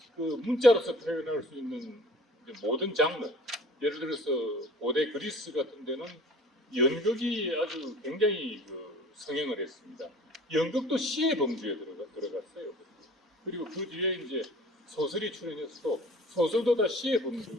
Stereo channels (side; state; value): both; normal; correlation 0.47